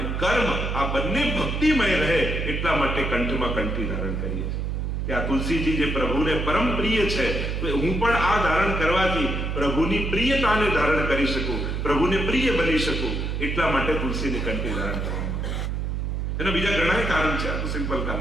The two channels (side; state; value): right; noise; hum, 1 dB below the sound